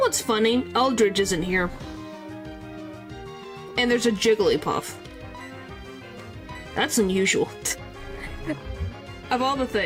funny? Eldridge isn't here. And there's a Jigglypuff. That's unusual. Of all the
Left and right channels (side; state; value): both; identical; correlation 1.00